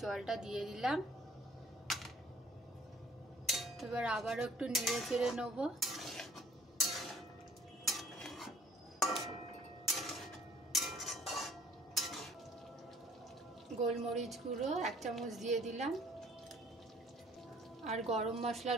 জলটা দিয়ে দিলাম। এবার আবারও একটু নেড়ে চেড়ে নেবো। গোলমরিচ গুঁড়ো 1 চামচ দিয়ে দিলাম আর গরম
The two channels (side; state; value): both; normal; correlation 0.55